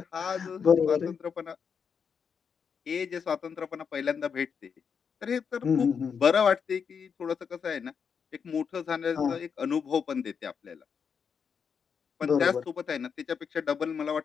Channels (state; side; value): quieter; right; 6.5 dB